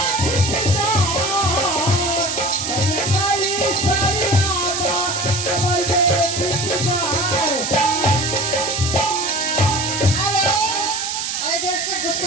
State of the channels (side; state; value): right; noise; hiss, 3 dB below the sound